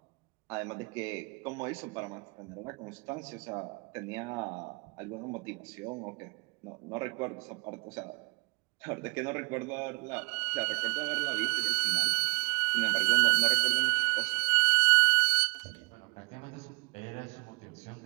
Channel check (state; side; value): quieter; left; 33.7 dB